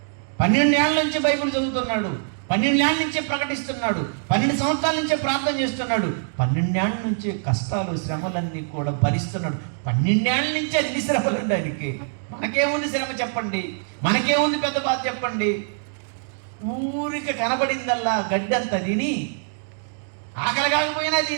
12 ఏళ్ల నుంచి బైబిల్ చదువుతున్నాడు. 12 ఏళ్ల నుంచే ప్రకటిస్తున్నాడు. 12 సంవత్సరాల నుంచే ప్రార్థన చేస్తున్నాడు. 12 ఏళ్ల నుంచి కష్టాలు, శ్రమలన్నీ కూడా భరిస్తున్నాడు. 12 ఏళ్ల నుంచి అన్ని శ్రమలు ఆయనకి. మనకేముంది శ్రమ చెప్పండి? మనకేముంది పెద్ద బాధ చెప్పండి? ఊరికి కనబడిందల్లా గడ్డంతా తిని, ఆకలి కాకపోయినా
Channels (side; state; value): left; silent; digital silence